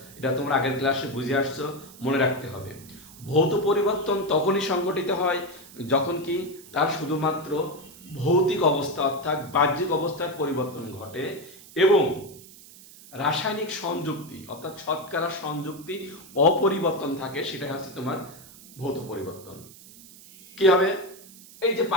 এটা তোমরা আগের ক্লাসে বুঝে আসছো, মনে রাখতে হবে। ভৌত পরিবর্তন তখনই সংঘটিত হয় যখন কি তার শুধুমাত্র ভৌতিক অবস্থা অর্থাৎ বাহ্যিক অবস্থার পরিবর্তন ঘটে এবং রাসায়নিক সংযুক্তি অর্থাৎ শতকরা সংযুক্তি অপরিবর্তন থাকে, সেটা হচ্ছে তোমার ভৌত পরিবর্তন। কি হবে, এই যে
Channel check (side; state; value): right; noise; hiss, 20 dB below the sound